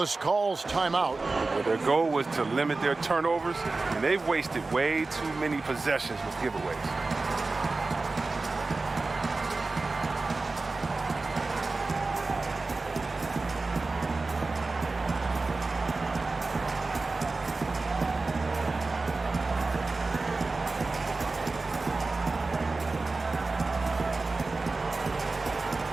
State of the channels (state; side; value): quieter; left; 3.6 dB